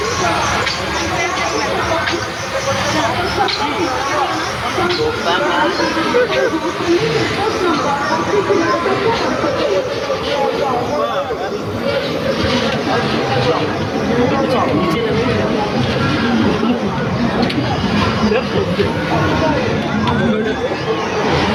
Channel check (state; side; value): identical; both; correlation 1.00